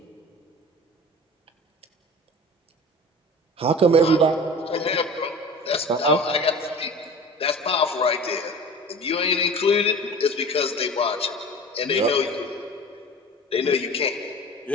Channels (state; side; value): normal; both; correlation 0.38